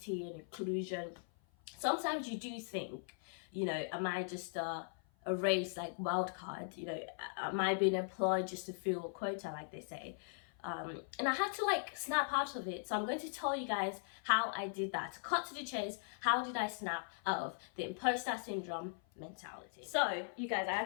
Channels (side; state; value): right; silent; 51 dB below the other